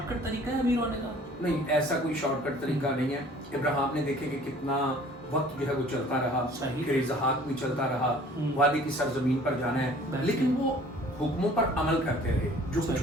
کٹ طریقہ ہے امیر ہونے کا؟ نہیں، ایسا کوئی شارٹ کٹ طریقہ نہیں ہے. ابراہیم نے دیکھے کہ کتنا وقت جو ہے وہ چلتا رہا، پھر اسحاق بھی چلتا رہا، وادی کی سرزمین پر جانا ہے، لیکن وہ حکموں پر عمل کرتے رہے جو کچھ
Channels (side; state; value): both; normal; correlation 0.51